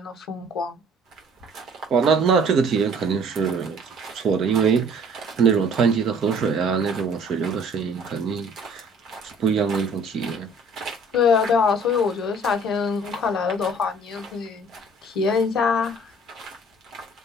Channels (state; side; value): normal; both; correlation 0.54